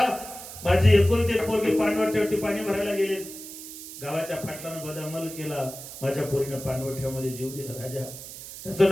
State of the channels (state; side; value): noise; right; hiss, 12 dB below the sound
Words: माझी एकुलती पोरगी पाणवठ्यावरती पाणी भरायला गेली गावाच्या पाटलानं बदामल केला माझ्या पोरीनं पाणवठ्यामध्ये जीव दिला राजा त्याचं